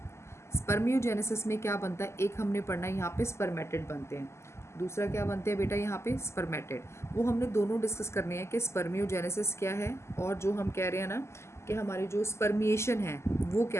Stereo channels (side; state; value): right; late; 0.13 ms